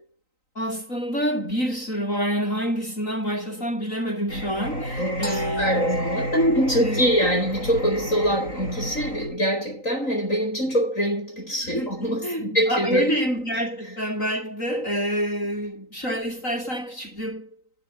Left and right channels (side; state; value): right; late; 3.9 ms